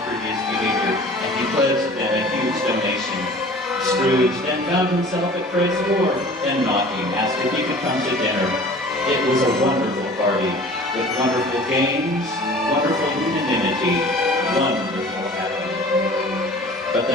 previous behavior, and he pledged them a huge donation. Scrooge then found himself at Fred's door, and knocking, asked if he could come to dinner. It was a wonderful party, with wonderful games, wonderful unanimity, wonderful happening. But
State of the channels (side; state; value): both; normal; correlation 0.45